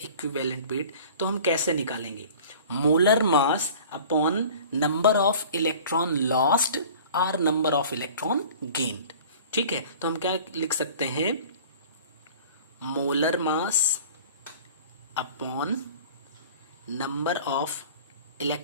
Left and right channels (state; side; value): inverted; both; correlation -0.44